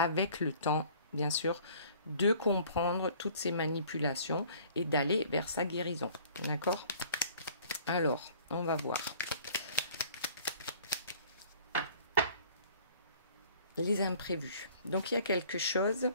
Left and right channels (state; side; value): inverted; both; correlation -0.52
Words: le temps, bien sûr, de comprendre toutes ces manipulations et d'aller vers sa guérison. D'accord? Alors, on va voir. Les imprévus. Donc, il y a quelque chose,